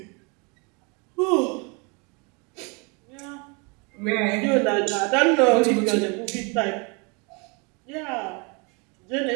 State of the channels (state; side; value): quieter; left; 31.7 dB